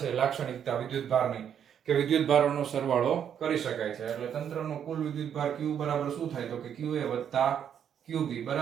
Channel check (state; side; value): quieter; left; 8.7 dB